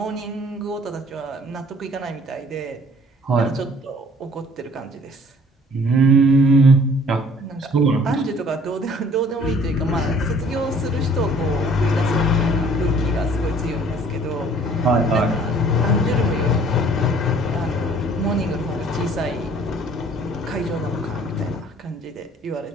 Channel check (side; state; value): both; normal; correlation 0.55